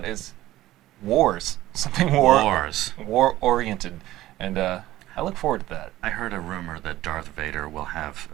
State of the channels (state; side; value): quieter; left; 15.5 dB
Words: is something war-oriented, and I look forward to that. I heard a rumor that Darth Vader will have